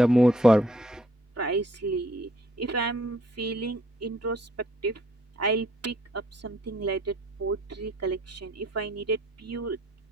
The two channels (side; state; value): both; normal; correlation 0.63